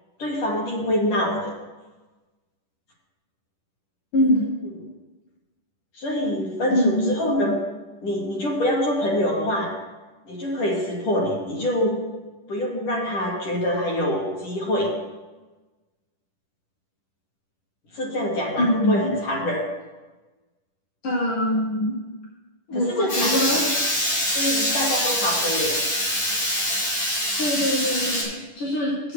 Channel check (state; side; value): late; right; 10 ms